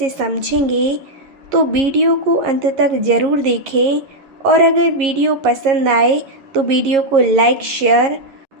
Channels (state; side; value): late; left; 11 ms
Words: समझेंगे। तो वीडियो को अंत तक ज़रूर देखें और अगर वीडियो पसंद आए तो वीडियो को लाइक शेयर